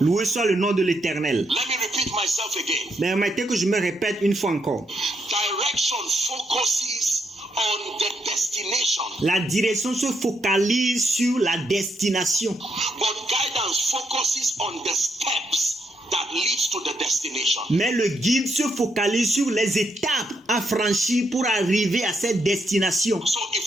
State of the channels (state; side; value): normal; both; correlation 0.78